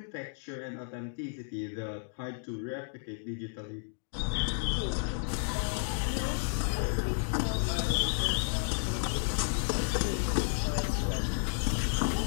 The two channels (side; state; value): right; silent; digital silence